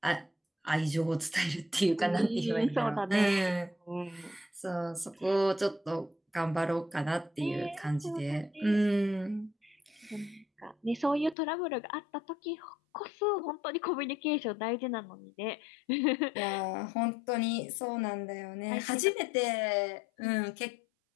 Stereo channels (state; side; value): drops out; right; at 11.4 s